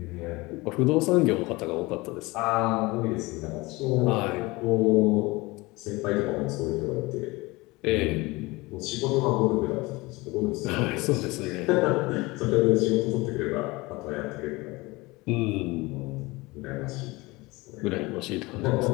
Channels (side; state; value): right; quieter; 22.7 dB